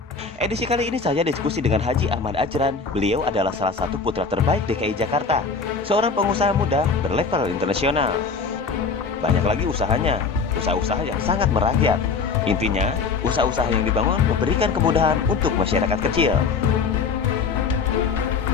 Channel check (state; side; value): quieter; right; 5.0 dB